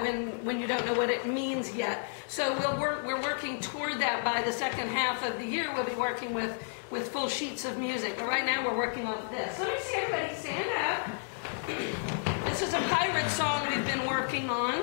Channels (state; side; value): silent; right; digital silence